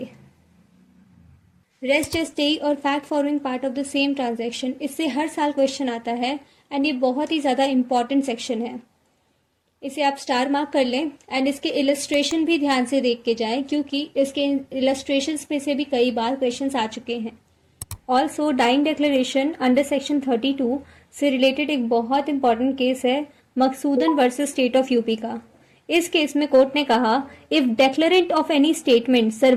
रेस्ट स्टे और fact following part of the same transaction, इससे हर साल क्वेश्चन आता है एंड ये बहुत ही ज़्यादा इंपॉर्टेंट सेक्शन है। इसे आप स्टार मार्क कर लें एंड इसके इलस्ट्रेशन भी ध्यान से देख के जाएं क्योंकि इसके इलस्ट्रेशंस में से भी कई बार क्वेश्चंस आ चुके हैं। Also dying declaration under section 32 से रिलेटेड एक बहुत इंपॉर्टेंट केस है Maksoodan versus state of UP का। इस केस में कोर्ट ने कहा if declarant of any statement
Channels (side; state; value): both; identical; correlation 1.00